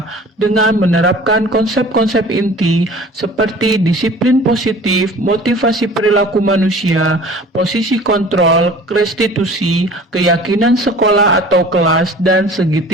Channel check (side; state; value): both; normal; correlation 0.45